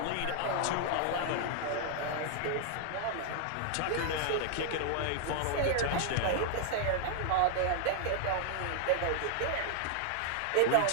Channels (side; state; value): both; different; correlation -0.01